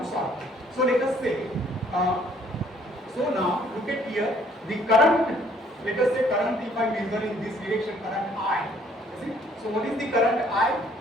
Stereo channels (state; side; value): normal; both; correlation 0.62